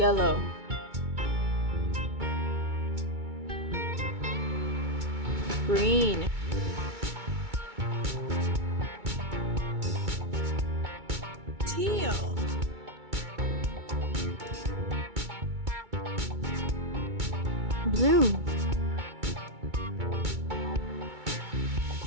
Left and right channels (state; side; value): late; left; 2.2 ms